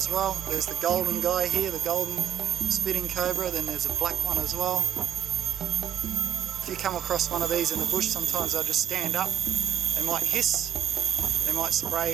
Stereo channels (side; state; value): left; quieter; 10.1 dB